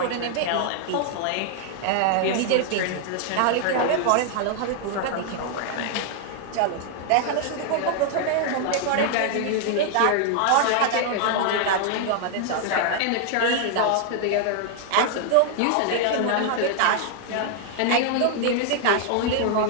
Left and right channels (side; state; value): both; different; correlation 0.00